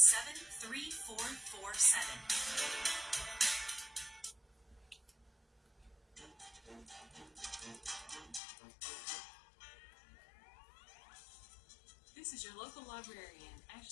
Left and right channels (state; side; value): drops out; right; at 8.4 s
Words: This is your local librarian,